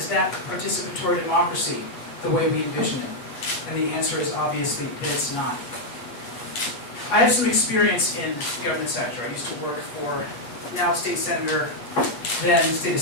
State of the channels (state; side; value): late; right; 8.4 ms